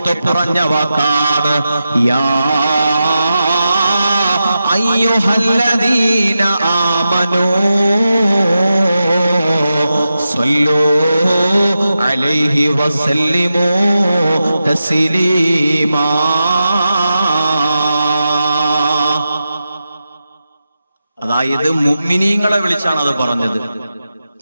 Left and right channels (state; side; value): inverted; both; correlation -0.90